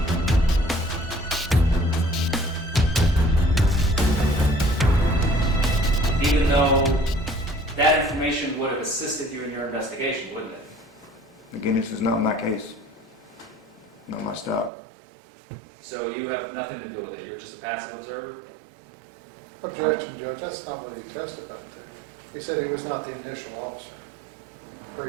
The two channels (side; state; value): left; drops out; at 14.7 s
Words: Even though that information would have assisted you in your investigation, wouldn't it? Again, this is not my case, not my stop. So you have nothing to do with it. You're just a passive observer? Objection, Judge. That's not what he testified to. He said he was not the initial officer